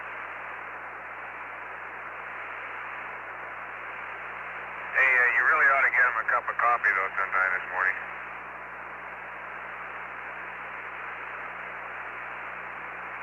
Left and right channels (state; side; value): identical; both; correlation 1.00